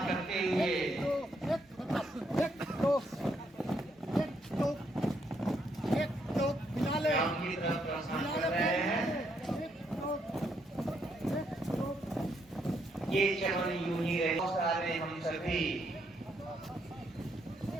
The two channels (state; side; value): normal; both; correlation 0.75